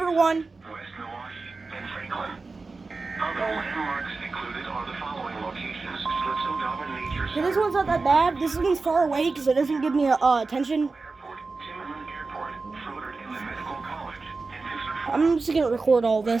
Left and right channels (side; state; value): left; quieter; 3.9 dB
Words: one. West Milwaukee and Franklin. Other landmarks included are the following locations: Schlitzow Nature Okay, this one's not that bad. This one's far away because it doesn't give me attention. Airport, Timmerman Airport, Froder Inland Medical College, and I'm just gonna record all